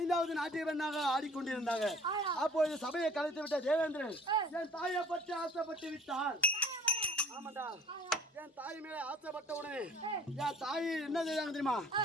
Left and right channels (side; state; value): both; normal; correlation 0.51